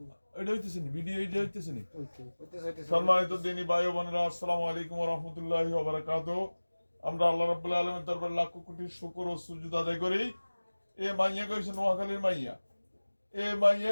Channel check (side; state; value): both; inverted; correlation -1.00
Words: নি সম্মানিত দিনী ভাই বোনেরা, আসসালামু আলাইকুম ওয়া রাহমাতুল্লাহি ওয়া বারাকাতুহু। আমরা আল্লাহ রাব্বুল আলামিনের দরবারে লাখ কোটি শুকর ও সুজুদ আদায় করি। এ মাইয়া কইছে নোয়াখালীর মাইয়া, এ মাইয়া